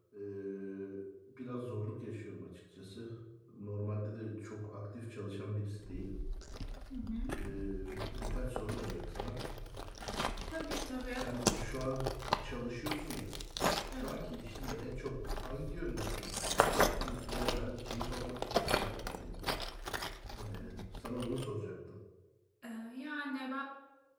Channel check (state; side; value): identical; both; correlation 1.00